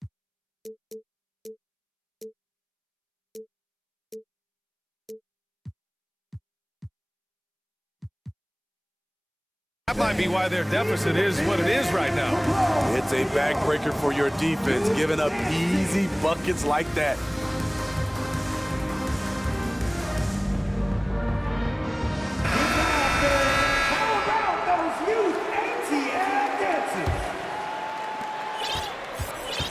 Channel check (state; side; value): identical; both; correlation 1.00